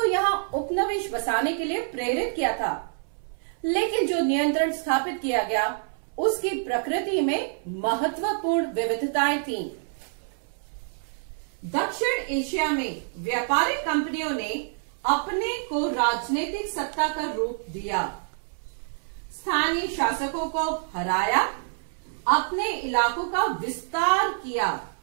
यहाँ उपनिवेश बसाने के लिए प्रेरित किया था, लेकिन जो नियंत्रण स्थापित किया गया उसकी प्रकृति में महत्वपूर्ण विविधताएं थीं। दक्षिण एशिया में व्यापारिक कंपनियों ने अपने को राजनीतिक सत्ता का रूप दिया, स्थानीय शासकों को हराया, अपने इलाकों का विस्तार किया,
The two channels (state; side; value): silent; left; 58 dB below the other